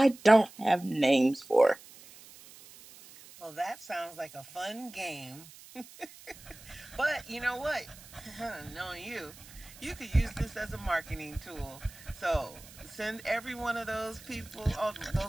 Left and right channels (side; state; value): right; noise; hiss, 20 dB below the sound